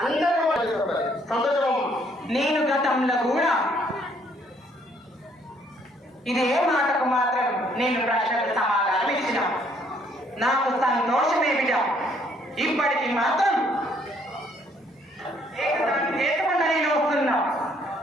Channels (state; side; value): normal; both; correlation 0.66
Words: అందరూ సంతోషం. నేను గతంలో కూడా ఇదే మాటకు మాత్రం నేను ప్రశ్నకు సమాధానం ఇచ్చిన నాకు సంతోషమే బిడ్డ. ఇప్పటికి మాత్రం ఏకకుండా నేను వస్తున్నా.